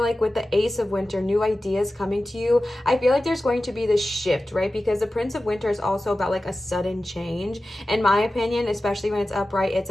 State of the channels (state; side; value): normal; both; correlation 0.95